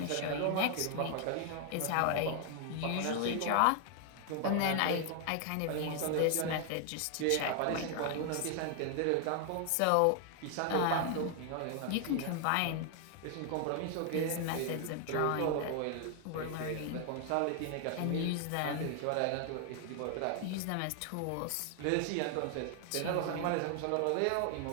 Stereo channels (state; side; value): different; both; correlation 0.00